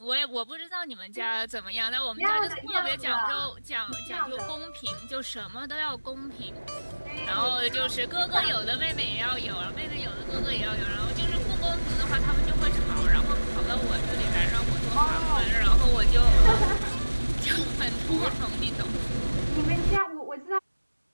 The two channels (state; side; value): inverted; both; correlation -1.00